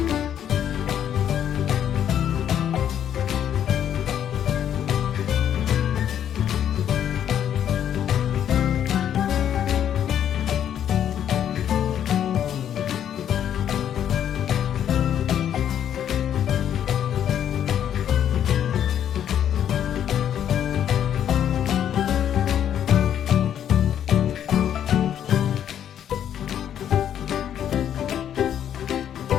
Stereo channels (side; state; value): right; quieter; 9.8 dB